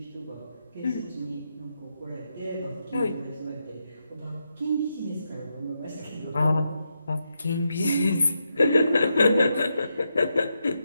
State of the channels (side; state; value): both; inverted; correlation -0.84